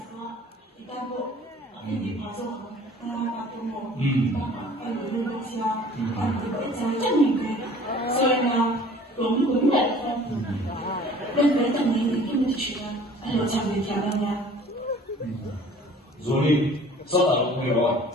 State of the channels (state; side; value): normal; both; correlation 0.49